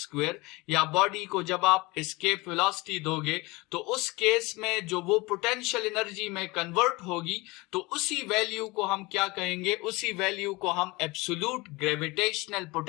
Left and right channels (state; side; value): quieter; right; 23.6 dB